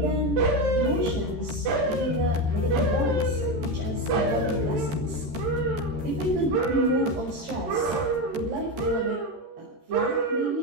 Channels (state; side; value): late; left; 13 ms